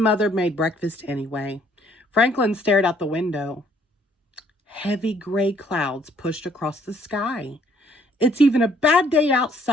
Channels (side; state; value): both; normal; correlation 0.64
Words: made breakfast anyway. Franklin stared out the window. Heavy gray clouds pushed across the sky. "It's even a bad day